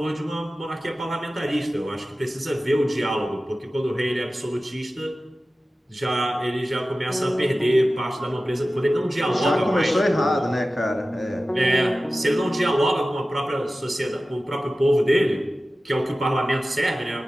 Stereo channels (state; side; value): normal; both; correlation 0.95